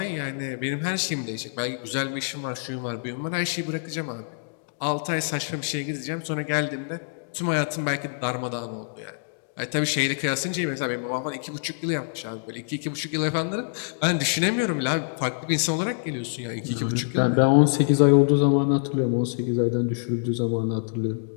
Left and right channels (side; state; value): right; silent; digital silence